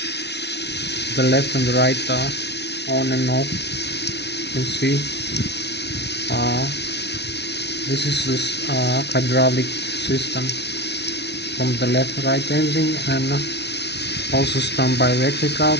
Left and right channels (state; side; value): late; right; 0.50 ms